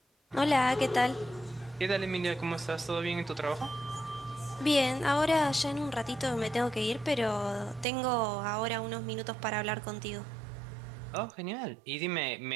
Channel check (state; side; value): drops out; left; at 7.9 s